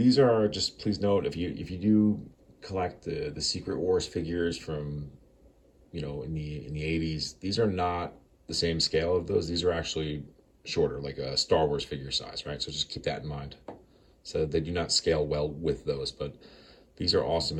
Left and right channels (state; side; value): identical; both; correlation 1.00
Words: are just, please note, if you do collect the Secret Wars figures from in the 80s, these are not the same scale of those. These are actually shorter, like a Star Wars figure size, right? So just keep that in mind. So they do not scale well with those, but these are awesome